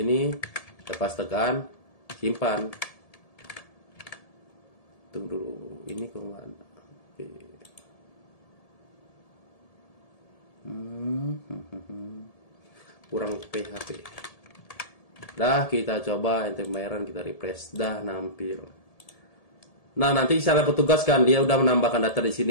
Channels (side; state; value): right; late; 1.7 ms